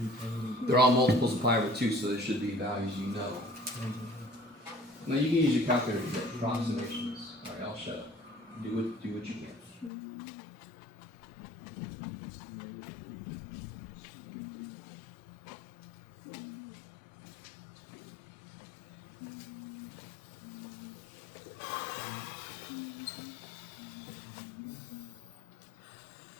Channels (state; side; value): drops out; right; at 9.9 s